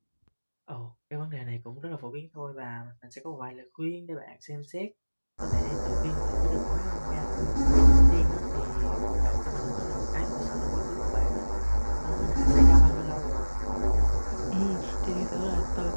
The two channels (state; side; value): inverted; both; correlation -1.00